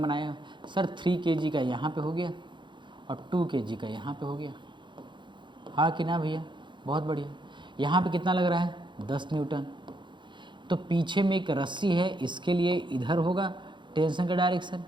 बनाया सर, 3 kg का यहाँ पे हो गया और 2 kg का यहाँ पे हो गया, हाँ कि ना भैया? बहुत बढ़िया। यहाँ पे कितना लग रहा है? 10 न्यूटन। तो पीछे में एक रस्सी है, इसके लिए इधर होगा टेंशन का डायरेक्शन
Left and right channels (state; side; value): late; left; 0.23 ms